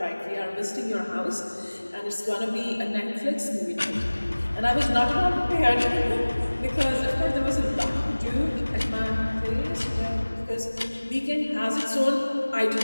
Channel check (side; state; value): both; inverted; correlation -1.00